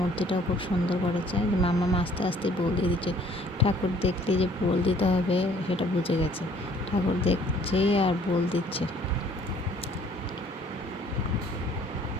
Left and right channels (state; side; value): normal; both; correlation 0.58